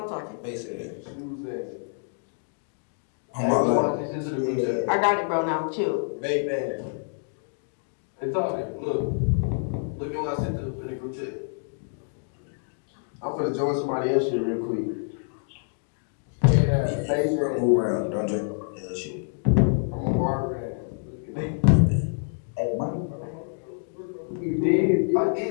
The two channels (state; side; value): silent; right; digital silence